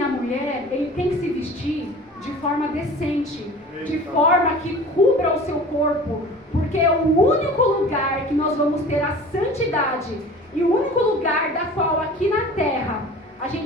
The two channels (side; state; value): both; normal; correlation 0.41